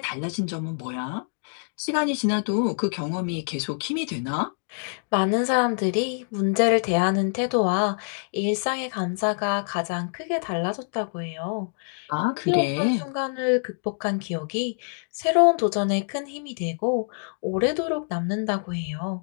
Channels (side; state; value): right; silent; 61 dB below the other